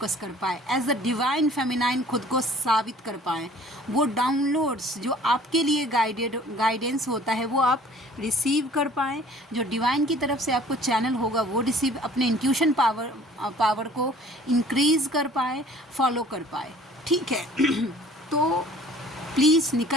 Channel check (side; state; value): both; normal; correlation 0.52